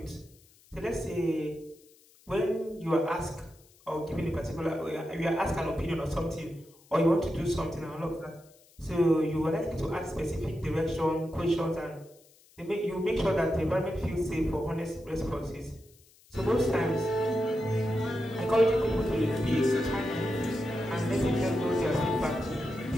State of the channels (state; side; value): noise; left; hiss, 28 dB below the sound